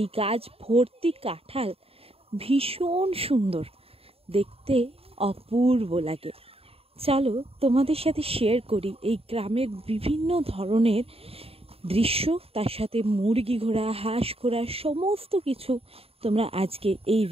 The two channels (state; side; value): late; left; 0.28 ms